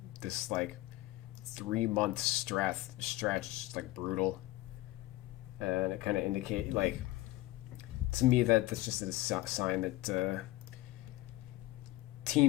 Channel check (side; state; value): right; quieter; 18.1 dB